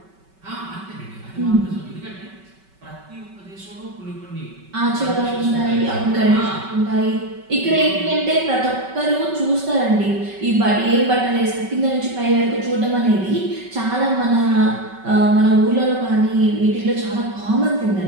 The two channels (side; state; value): left; late; 5.3 ms